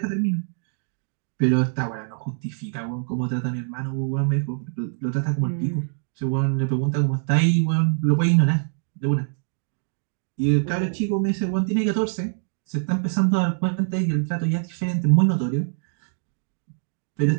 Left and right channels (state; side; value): silent; left; digital silence